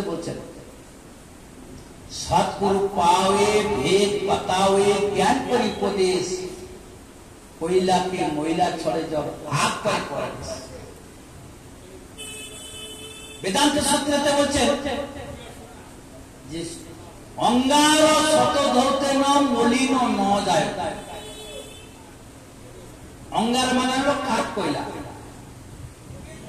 বলছেন, সৎগুরু পাওয়ে ভেদ बतावे ज्ञान परिपदेश कोयला के मोयला छोड़े जब आग पर पड़े। वेदांत सूत्रते বলছেন যে অঙ্গার শত ধরতে ন মলিন ন যায়। অঙ্গার মানে হলো কাঠ কয়লা।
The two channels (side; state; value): both; identical; correlation 1.00